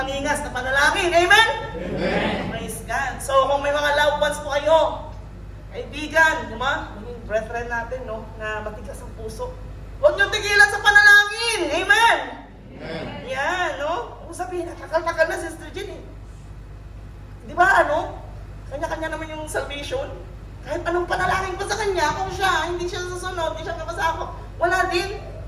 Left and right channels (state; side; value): identical; both; correlation 1.00